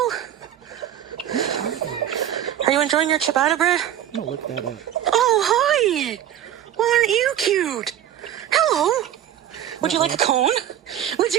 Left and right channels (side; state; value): left; quieter; 11.0 dB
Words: Are you enjoying your ciabatta bread? I'm gonna look that up. Oh, hi. Well, aren't you cute? Hello. Would you like a cone? Would